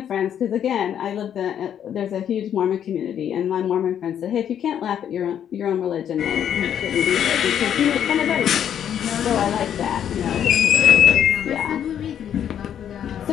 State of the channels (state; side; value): quieter; right; 9.4 dB